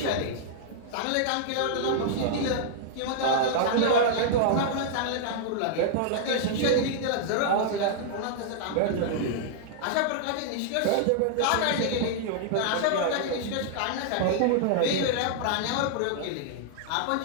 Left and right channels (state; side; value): different; both; correlation -0.01